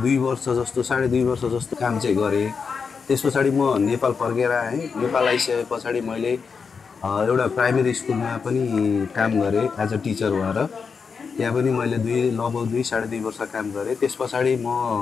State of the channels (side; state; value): right; quieter; 5.6 dB